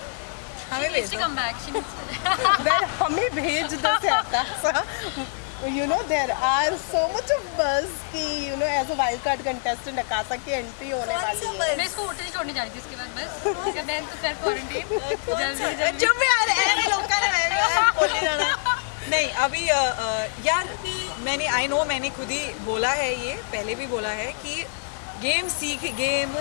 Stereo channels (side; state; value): right; silent; digital silence